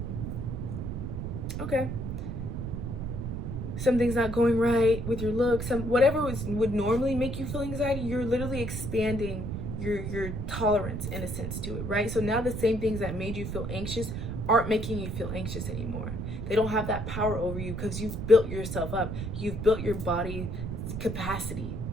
Okay. Something's not going right with your look. Whatever would normally make you feel anxiety, you're literally expanding your tolerance in a sense to it, right? So now the same things that made you feel anxious aren't making you feel anxious anymore. They don't have that power over you because you've built yourself up. You've built your body capacity.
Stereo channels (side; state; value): right; noise; rumble, 4 dB below the sound